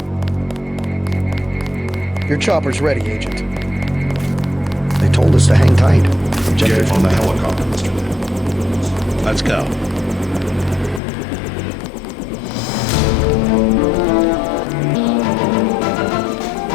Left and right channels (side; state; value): right; drops out; at 11.0 s